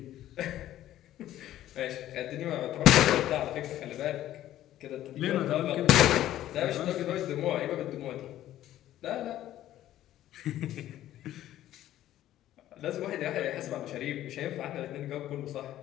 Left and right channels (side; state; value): right; quieter; 13.2 dB